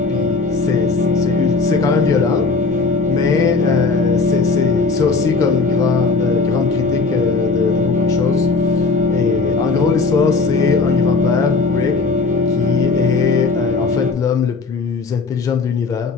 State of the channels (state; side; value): quieter; right; 4.3 dB